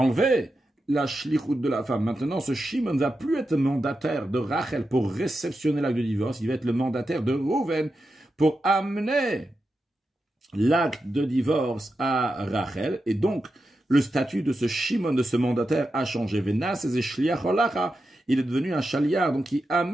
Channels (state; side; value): normal; both; correlation 0.89